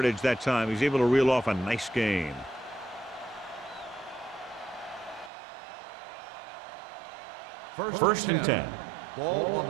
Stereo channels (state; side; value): drops out; left; at 5.3 s